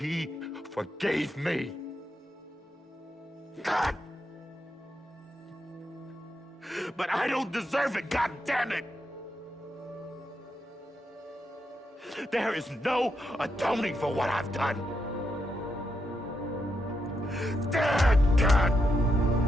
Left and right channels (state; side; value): normal; both; correlation 0.83